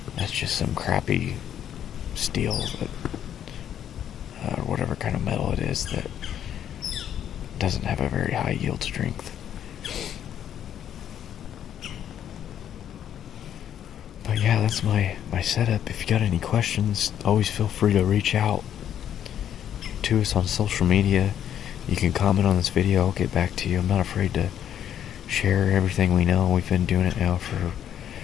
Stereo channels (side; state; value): right; quieter; 9.9 dB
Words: That's just some crappy steel that, or whatever kind of metal it is, that doesn't have a very high yield strength. But yeah, that's my setup. If you got any questions, always feel free to reach out to us on social media. You can comment on this video, I'll get back to you. I'm not afraid to share everything we know. We've been doing it now for,